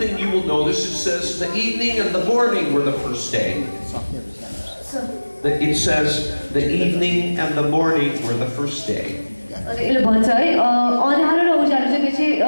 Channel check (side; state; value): both; inverted; correlation -1.00